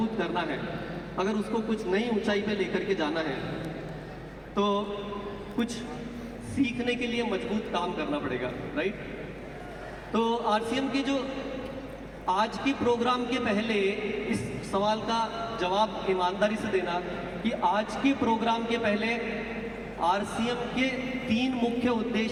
करना है, अगर उसको कुछ नई ऊंचाई पे लेकर के जाना है, तो कुछ सीखने के लिए मजबूत काम करना पड़ेगा। राइट? तो आरसीएम के जो आज के प्रोग्राम के पहले इस सवाल का जवाब ईमानदारी से देना कि आज के प्रोग्राम के पहले आरसीएम के 3 मुख्य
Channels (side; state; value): both; identical; correlation 1.00